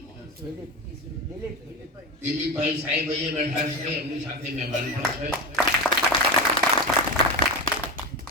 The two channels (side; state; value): both; normal; correlation 0.21